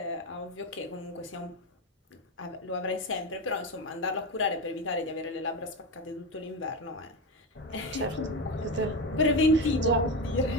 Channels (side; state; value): both; normal; correlation 0.17